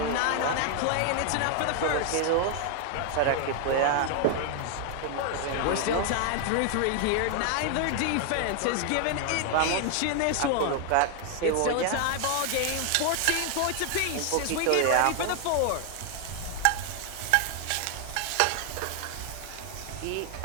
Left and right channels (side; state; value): both; different; correlation 0.00